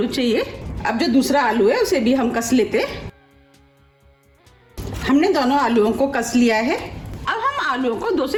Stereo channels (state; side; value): identical; both; correlation 1.00